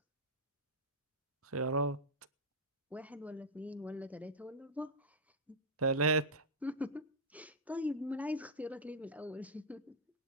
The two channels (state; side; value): normal; both; correlation -0.04